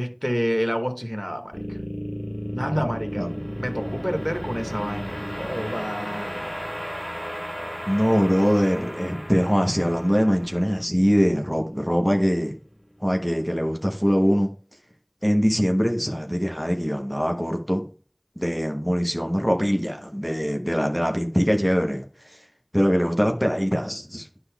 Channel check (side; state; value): both; identical; correlation 1.00